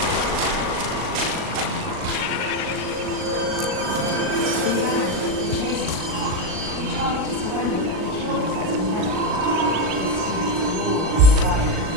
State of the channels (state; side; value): late; left; 38 ms